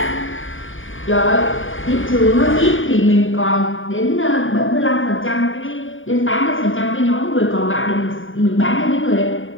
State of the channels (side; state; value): right; late; 0.57 ms